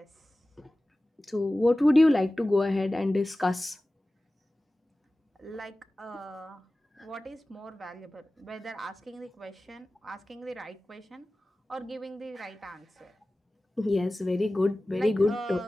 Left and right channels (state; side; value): normal; both; correlation 0.97